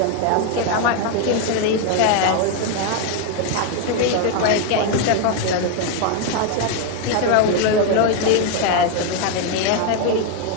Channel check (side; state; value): both; different; correlation 0.01